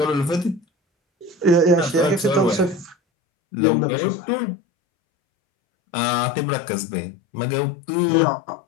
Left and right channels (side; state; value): right; drops out; at 3.0 s